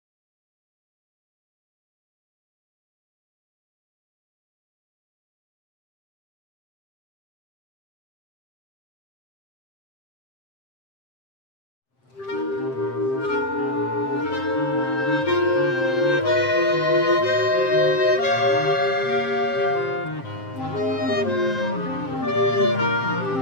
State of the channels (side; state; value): right; late; 7.6 ms